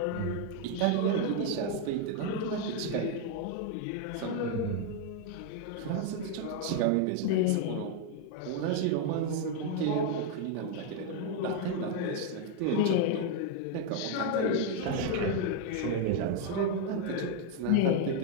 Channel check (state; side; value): different; both; correlation 0.00